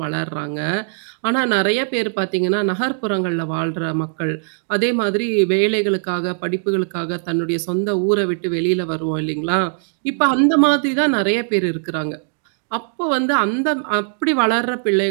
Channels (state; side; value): silent; left; digital silence